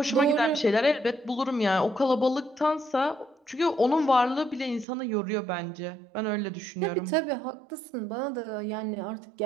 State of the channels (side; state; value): left; drops out; at 4.9 s